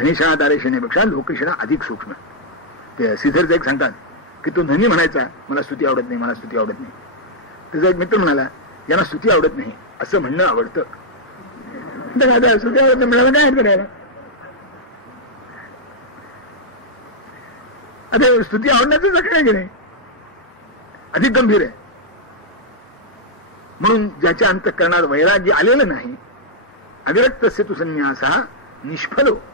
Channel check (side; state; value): both; normal; correlation -0.04